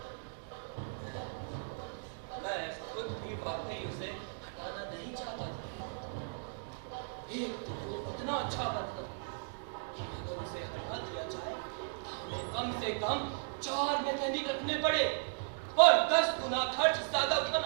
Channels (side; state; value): left; silent; digital silence